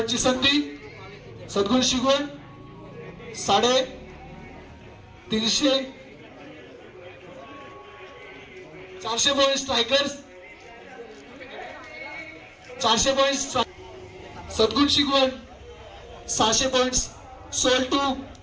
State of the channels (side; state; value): both; identical; correlation 1.00